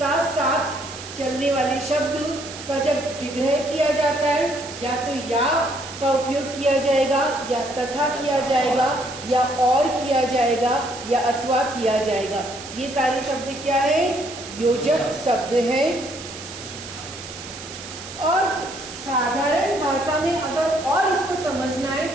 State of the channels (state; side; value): noise; right; hiss, 12 dB below the sound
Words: साथ चलने वाले शब्द का जब विग्रह किया जाता है, या तो या का उपयोग किया जाएगा, या तथा किया जाएगा, या और किया जाएगा, या अथवा किया जाएगा। ये सारे शब्द क्या है? योजक शब्द है। और साधारण भाषा में अगर और इसको समझना है